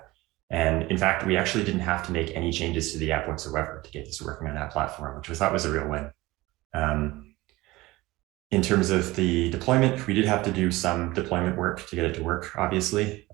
And in fact, we actually didn't have to make any changes to the app whatsoever to get this working on that platform, which we thought was a real win. In terms of the deployment, we did have to do some deployment work to get it to work, obviously.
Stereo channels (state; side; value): quieter; left; 19.8 dB